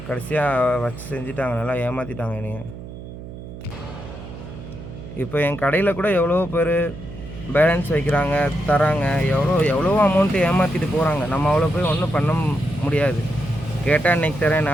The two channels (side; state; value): right; noise; hum, 12 dB below the sound